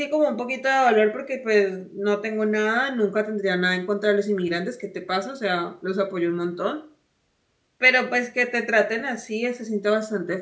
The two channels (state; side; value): identical; both; correlation 1.00